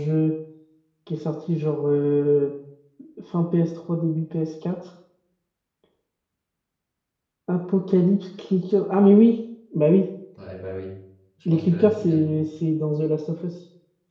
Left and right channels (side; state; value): both; identical; correlation 1.00